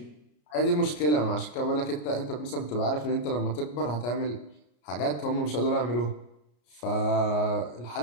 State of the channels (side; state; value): right; late; 33 ms